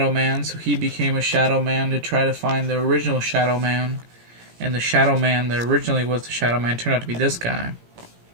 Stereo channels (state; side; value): late; left; 17 ms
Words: Man, so he became a Shadow Man to try to find the original Shadow Man. And the Shadow Man that originally was the Shadow Man turned out to be this guy.